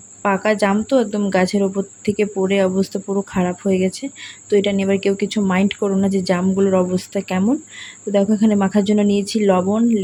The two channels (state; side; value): identical; both; correlation 1.00